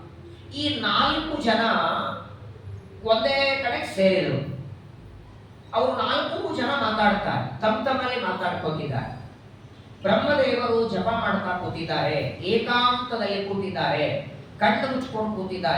ಈ 4 ಜನ ಒಂದೇ ಕಡೆ ಸೇರಿದರು. ಅವರು 4 ಜನ ಮಾತಾಡ್ತಾರೆ, ತಮ್ಮಲ್ಲಿ ಮಾತಾಡ್ಕೋತಿದ್ದಾರೆ. ಬ್ರಹ್ಮದೇವರು ಜಪ ಮಾಡ್ತಾ ಕೂತಿದ್ದಾರೆ, ಏಕಾಂತದಲ್ಲಿ ಕೂತಿದ್ದಾರೆ, ಕಣ್ಣು ಮುಚ್ಕೊಂಡು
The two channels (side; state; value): both; identical; correlation 1.00